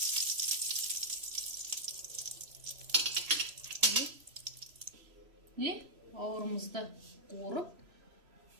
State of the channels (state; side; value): late; left; 3.0 ms